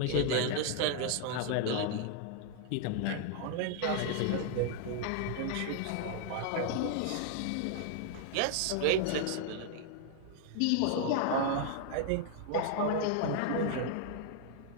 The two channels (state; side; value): different; both; correlation 0.00